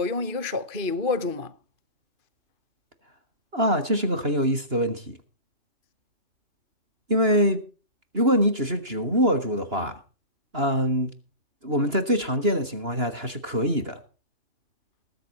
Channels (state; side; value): late; left; 2.9 ms